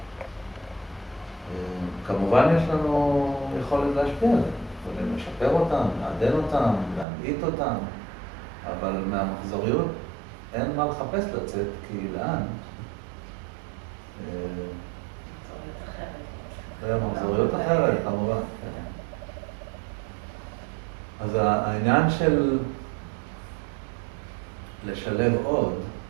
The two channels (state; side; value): drops out; left; at 7.1 s